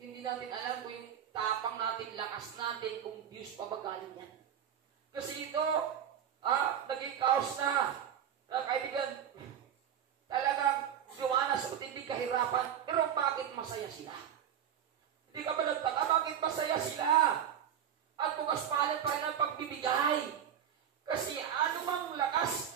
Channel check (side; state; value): left; quieter; 9.1 dB